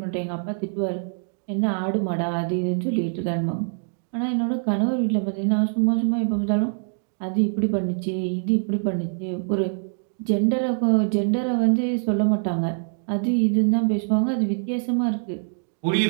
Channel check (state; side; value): silent; left; digital silence